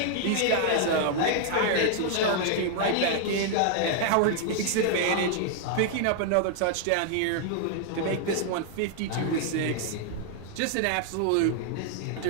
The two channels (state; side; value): different; both; correlation 0.00